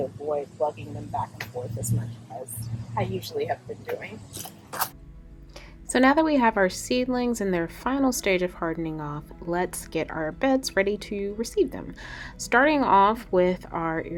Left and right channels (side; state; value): both; identical; correlation 1.00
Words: avoid lugging them back and forth as much as I usually have been doing. So now that we have our seedlings in their final stage of hardening off, let's get our beds ready to receive them. Starting off with our